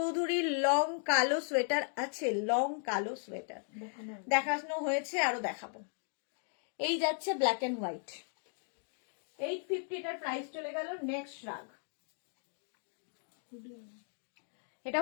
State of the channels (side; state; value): right; silent; 54 dB below the other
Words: লং কালো সোয়েটার আছে, লং কালো সোয়েটার দেখানো হয়েছে, আরো দেখাবো। এই যাচ্ছে ব্ল্যাক অ্যান্ড হোয়াইট। 850 এটার প্রাইস চলে গেল। নেক্সট রাগ, এটা